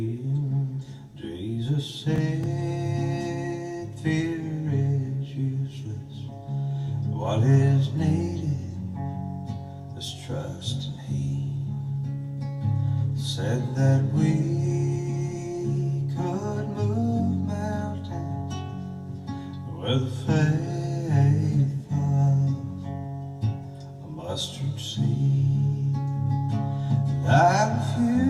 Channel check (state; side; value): identical; both; correlation 1.00